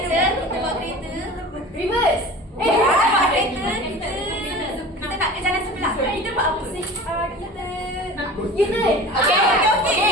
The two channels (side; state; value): both; normal; correlation 0.38